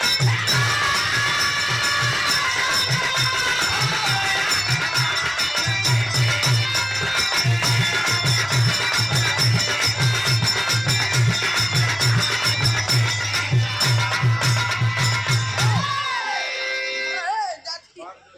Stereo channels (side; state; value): both; identical; correlation 1.00